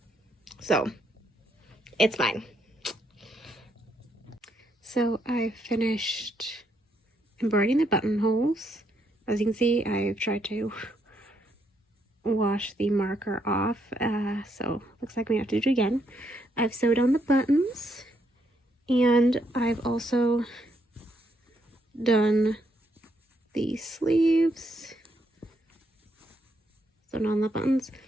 So it's fine. So I finished embroidering the buttonholes. As you can see, I've tried to wash the marker off, so looks like we have to do it again. I've sewed on the buttons, and I've also done the sleeves, sewn on the buttons.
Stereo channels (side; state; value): both; normal; correlation 0.76